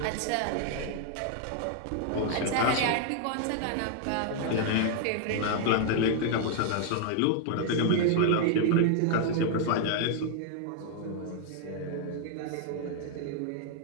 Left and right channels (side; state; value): both; different; correlation 0.00